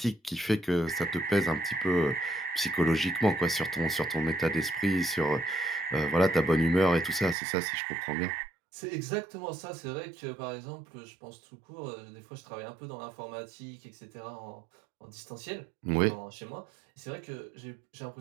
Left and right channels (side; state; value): left; drops out; at 7.4 s